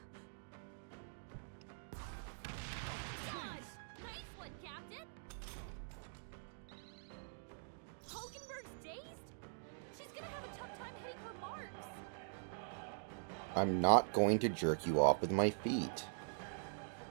Gosh, nice one, Captain. Hulkenberg's dazed? She's gonna have a tough time hitting her marks. I'm not going to jerk you off with my feet.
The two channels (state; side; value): silent; left; digital silence